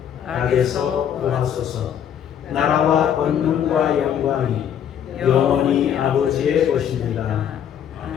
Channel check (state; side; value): quieter; right; 9.1 dB